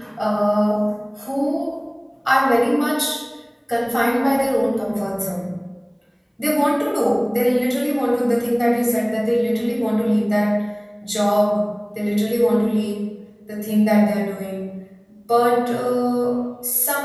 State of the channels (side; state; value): both; identical; correlation 1.00